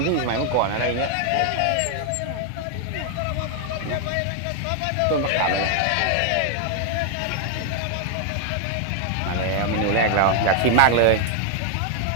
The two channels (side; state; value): both; different; correlation 0.00